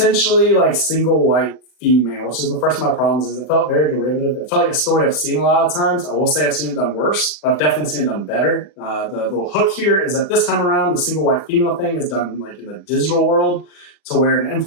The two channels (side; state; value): right; late; 40 ms